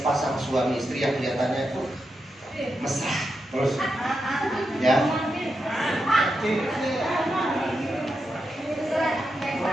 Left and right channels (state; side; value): normal; both; correlation 0.87